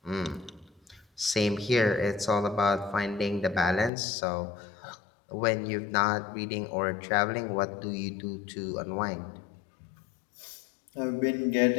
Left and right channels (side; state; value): right; drops out; at 3.9 s